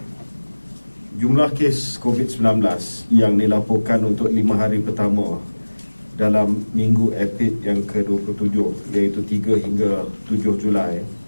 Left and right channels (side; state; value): both; inverted; correlation -1.00